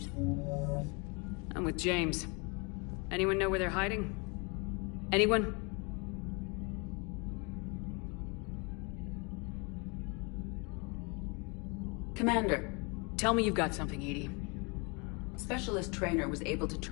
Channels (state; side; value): quieter; right; 31.3 dB